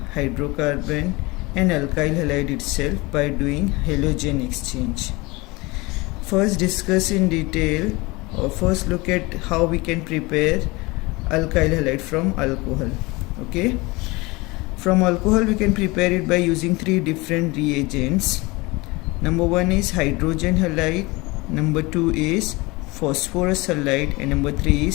hydrocarbon and alkyl halide itself by doing halogen exchange. First discuss in detail or first look at how we can prepare alkyl halide from alcohol. Okay. From alcohol we can prepare it by using three different reagents. Number one is hydrogen halide, number two is phosphorus halide and number three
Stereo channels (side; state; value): right; quieter; 23.7 dB